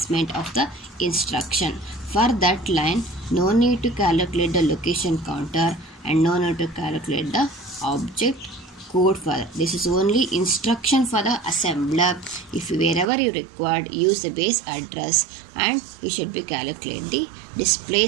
of the instruction. For that line, no need to calculate the location counter and no need to calculate the object code for that. This is only instruction for the assembler. If wherever you required, use the base address and you should be calculate the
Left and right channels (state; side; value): drops out; left; at 13.1 s